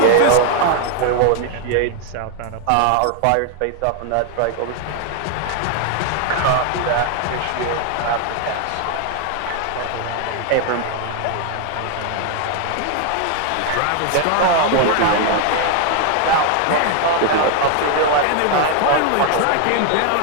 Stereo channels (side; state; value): both; different; correlation 0.00